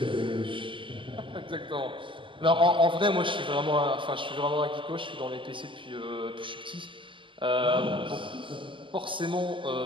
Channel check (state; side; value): late; left; 0.25 ms